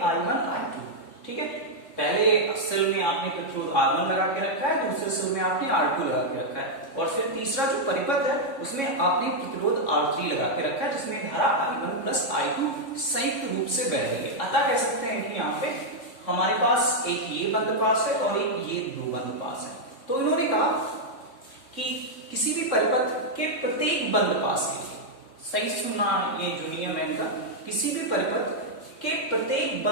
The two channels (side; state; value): right; late; 3.6 ms